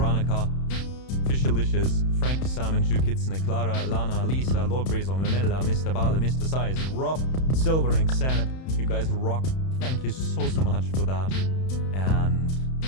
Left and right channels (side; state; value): right; late; 31 ms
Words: Fishalicious, Frankie Simon, Jew Kitsune, Clara, Lana, Lisa, Lord Brazo, Mamilla, Mr. Bale, Mr. Size, Rob, Silver, and Xanep. You guys rock. Thank you so much for that. And